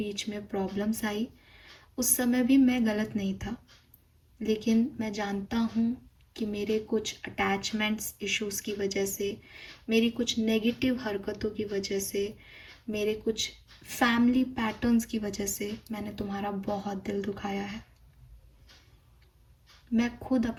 में प्रॉब्लम्स आई, उस समय भी मैं गलत नहीं था, लेकिन मैं जानता हूँ कि मेरे कुछ अटैचमेंट्स इश्यूज़ की वजह से, मेरी कुछ नेगेटिव हरकतों की वजह से, मेरे कुछ फैमिली पैटर्न्स की वजह से मैंने तुम्हारा बहुत दिल दुखाया है। मैं खुद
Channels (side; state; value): both; identical; correlation 1.00